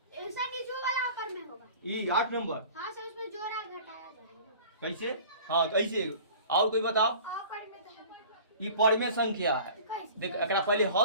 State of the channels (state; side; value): inverted; both; correlation -0.43